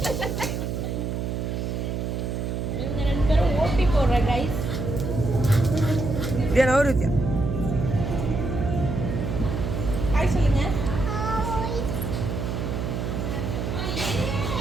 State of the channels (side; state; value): right; noise; hum, 2 dB below the sound